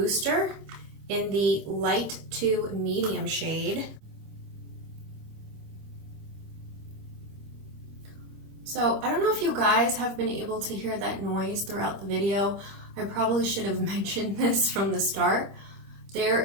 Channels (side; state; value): left; late; 25 ms